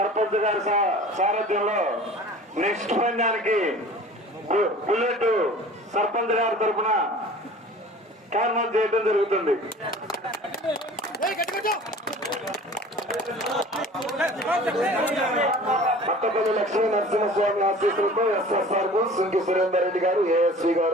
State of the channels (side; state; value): both; normal; correlation 0.44